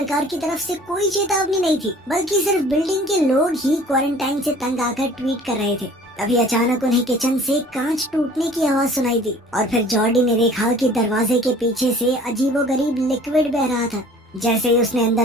की तरफ से कोई चेतावनी नहीं थी, बल्कि सिर्फ बिल्डिंग के लोग ही क्वारंटाइन से तंग आकर ट्वीट कर रहे थे। तभी अचानक उन्हें किचन से कांच टूटने की आवाज सुनाई दी और फिर जॉर्डी ने देखा कि दरवाजे के पीछे से अजीबोगरीब लिक्विड बह रहा था। जैसे ही उसने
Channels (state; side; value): normal; both; correlation 0.49